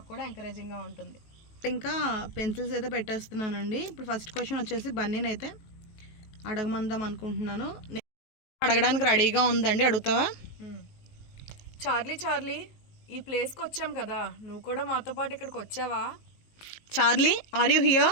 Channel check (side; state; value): right; late; 19 ms